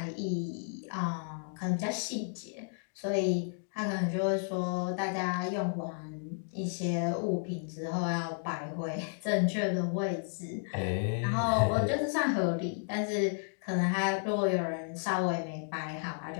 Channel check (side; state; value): right; silent; digital silence